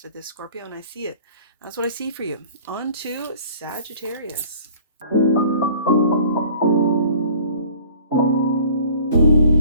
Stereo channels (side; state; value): both; inverted; correlation -0.50